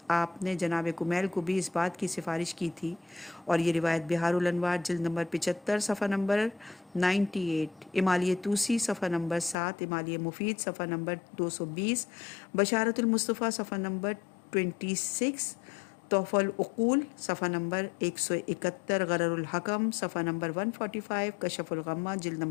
آپ نے جناب کمیل کو بھی اس بات کی سفارش کی تھی، اور یہ روایت بہار الانوار جلد نمبر 75 صفحہ نمبر 98، امالیہ توسی صفحہ نمبر 7، امالیہ مفید صفحہ نمبر 220، بشارت المصطفیٰ صفحہ نمبر 26، تحفہ العقول صفحہ نمبر 171، غرر الحکم صفحہ نمبر 145، کشف الغمہ جلد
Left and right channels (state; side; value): drops out; right; at 9.6 s